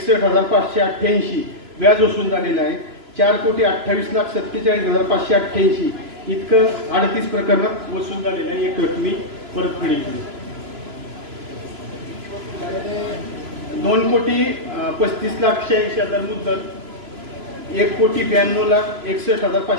व्याज वसूल झालेलं आहे. 4,28,47,588 इतकं 38 प्रकरणात वसूल झालेलं आहे एक रकमी परतफेडीची. 2,35,86,000 मुद्दल,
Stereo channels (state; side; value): late; left; 3.0 ms